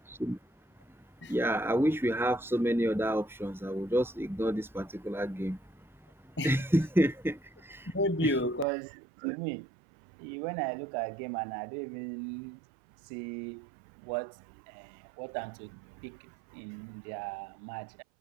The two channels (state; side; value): drops out; left; at 8.7 s